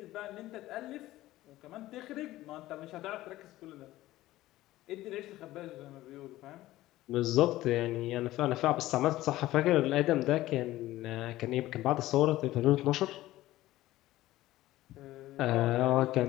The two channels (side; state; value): right; quieter; 16.2 dB